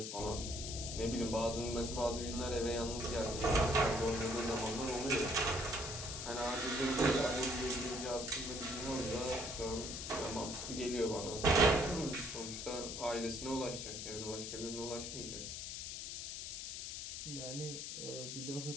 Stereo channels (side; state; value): left; noise; hiss, 6 dB below the sound